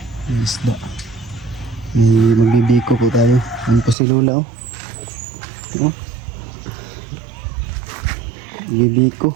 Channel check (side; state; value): left; drops out; at 4.0 s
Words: may isda. May magbibiko po tayo. Ano po si Lola oh. Magbibiko.